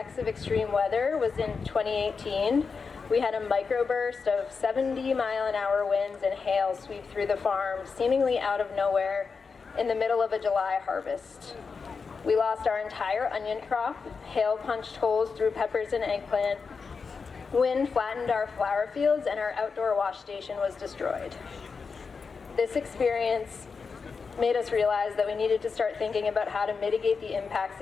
of extreme weather was in 2018, we had a microburst of 70-mile-an-hour winds and hail sweep through the farm, seemingly out of nowhere, in the middle of a July harvest. We lost our entire onion crop, hail punched holes through peppers and eggplant, wind flattened our flower fields, and our outdoor wash station was destroyed. This experience made us realize that we needed to start thinking about how to mitigate the impacts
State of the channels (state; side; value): quieter; right; 5.1 dB